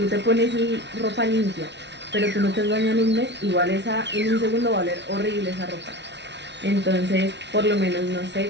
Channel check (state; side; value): late; left; 0.51 ms